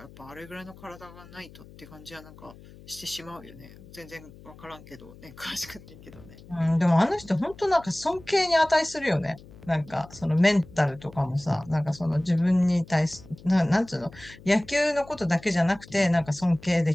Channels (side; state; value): left; noise; hum, 20 dB below the sound